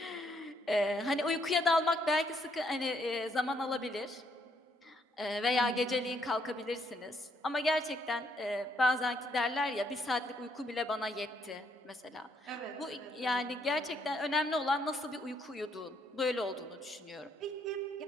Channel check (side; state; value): both; normal; correlation 0.72